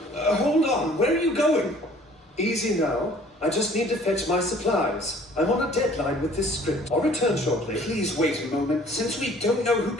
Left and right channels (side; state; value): both; normal; correlation 0.54